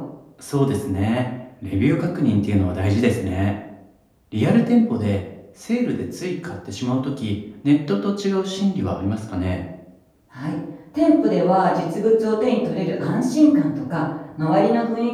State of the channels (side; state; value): both; identical; correlation 1.00